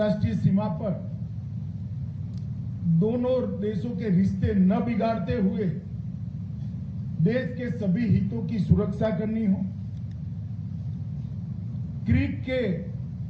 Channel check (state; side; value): identical; both; correlation 1.00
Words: सीमा पर दोनों देशों के रिश्ते न बिगाड़ते हुए देश के सभी हितों की सुरक्षा करनी हो, क्रीक के